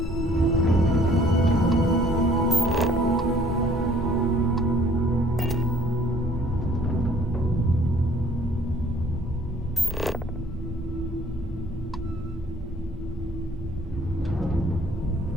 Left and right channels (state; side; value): normal; both; correlation 0.57